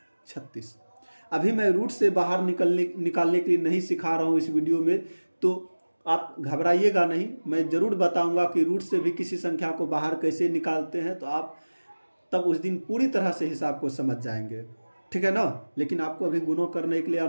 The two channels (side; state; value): both; inverted; correlation -1.00